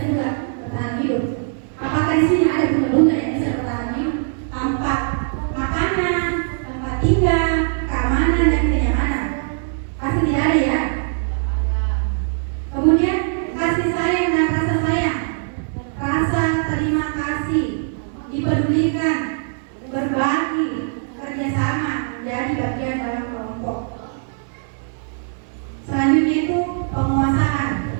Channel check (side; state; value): left; silent; digital silence